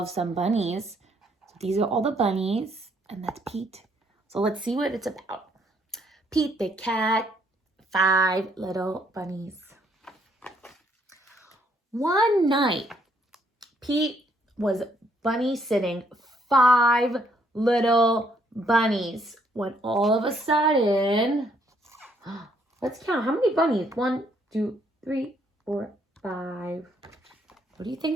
some bunnies. So these are all the bunnies and that's Pete. So let's see what it's about. Pete the Cat, 5 little bunnies. One night, Pete was bunny sitting 5 little bunnies when all of a sudden, let's count. How many bunnies? 1, 2, 3, 4, 5. What do you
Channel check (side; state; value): both; normal; correlation 0.69